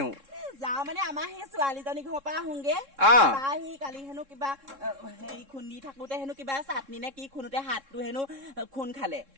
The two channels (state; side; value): late; left; 3.7 ms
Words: যাওঁ মানে আমাৰ সেই ছোৱালীজনী ঘৰৰ পৰা আহোগে সি কালি হেনো কিবা হেৰি খুন্দি থাকোতে হেনো কিবা চাটনি নে কি খুন্দোতে হাতটো হেনো খুন খালে